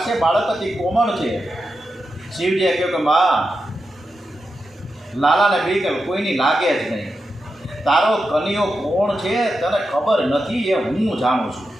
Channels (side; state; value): both; normal; correlation 0.88